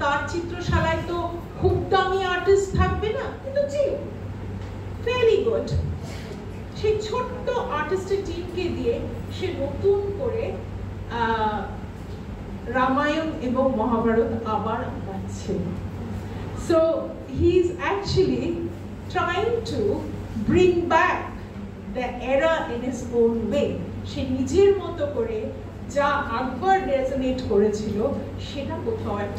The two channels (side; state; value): both; identical; correlation 1.00